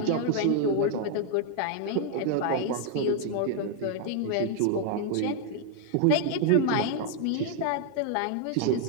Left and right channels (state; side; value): different; both; correlation 0.00